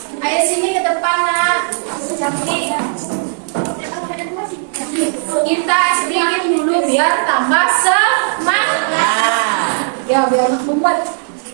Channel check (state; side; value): silent; left; digital silence